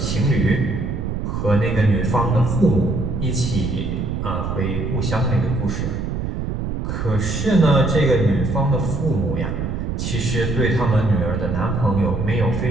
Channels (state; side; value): noise; right; rumble, 3 dB below the sound